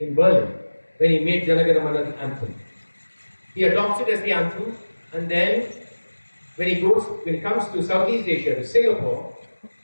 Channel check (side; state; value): both; inverted; correlation -1.00